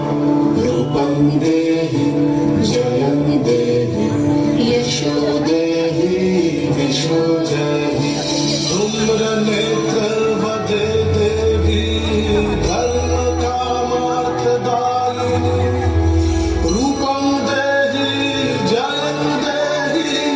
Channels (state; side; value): identical; both; correlation 1.00